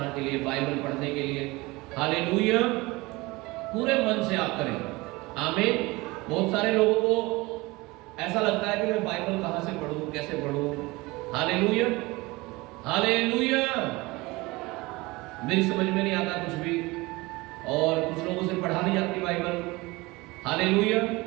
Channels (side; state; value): left; quieter; 22.4 dB